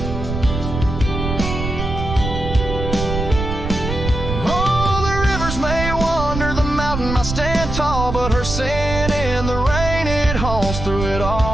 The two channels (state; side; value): noise; right; rumble, 5 dB below the sound